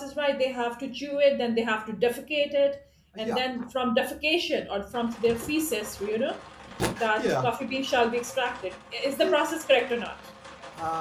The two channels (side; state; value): both; identical; correlation 1.00